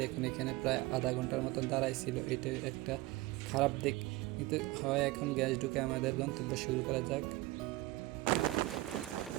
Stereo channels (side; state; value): left; quieter; 19.7 dB